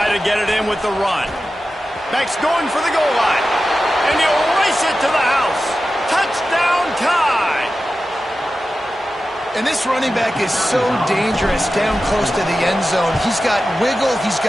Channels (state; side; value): normal; both; correlation 0.93